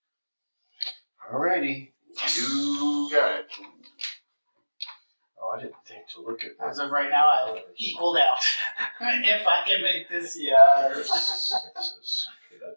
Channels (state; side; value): inverted; both; correlation -1.00